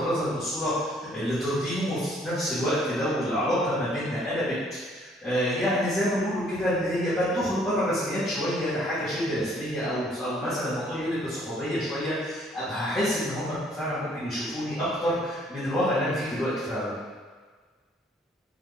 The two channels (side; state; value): both; normal; correlation 0.62